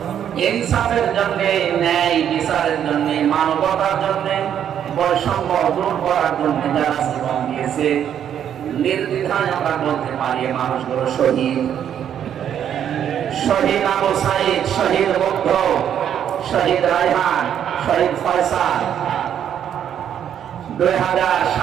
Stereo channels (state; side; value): quieter; left; 9.4 dB